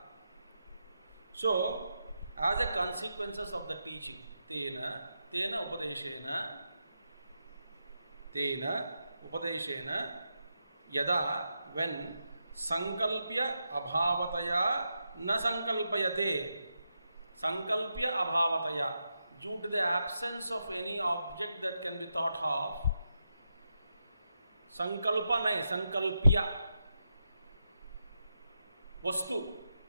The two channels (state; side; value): inverted; both; correlation -0.86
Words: So as a consequences of the teaching, tena upadeshena yada, when sankalpya abhavataya na sankalpayate, sankalpya abhavataya, due to the absence of any object that can be thought of, sankalpa nahi, sankalpya, वस्तु